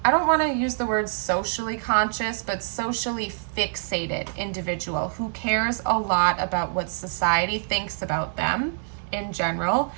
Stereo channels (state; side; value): silent; left; digital silence